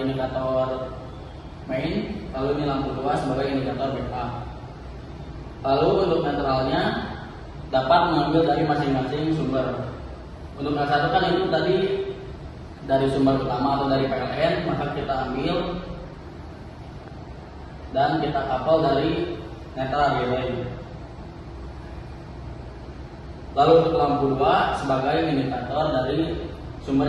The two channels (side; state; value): both; identical; correlation 1.00